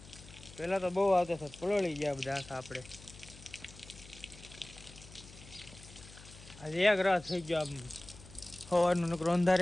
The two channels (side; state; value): left; noise; hum, 19 dB below the sound